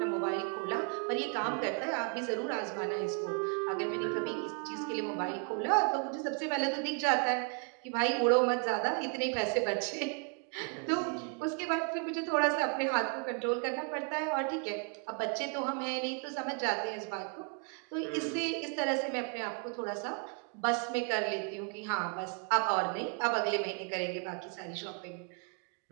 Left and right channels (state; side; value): quieter; left; 38.7 dB